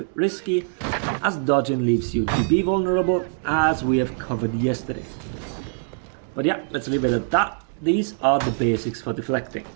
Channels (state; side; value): silent; left; digital silence